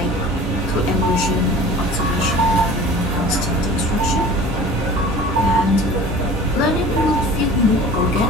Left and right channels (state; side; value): normal; both; correlation 0.42